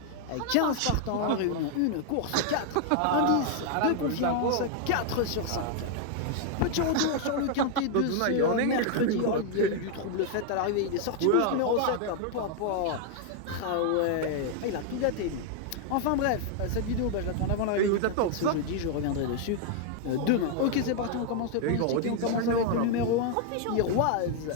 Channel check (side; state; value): both; different; correlation 0.00